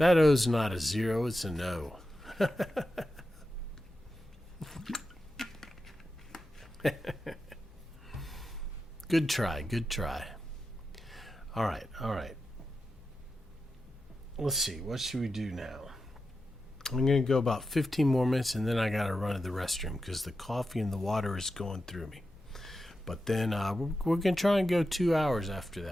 O's not a 0, it's an O. Good try, good try. All right. Let's see, what should we do now? I'm going to go about 15 more minutes, and then I got to run to the restroom because the coffee and the water is going through me. But then we're going to try and go 2 hours after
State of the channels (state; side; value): normal; both; correlation 0.90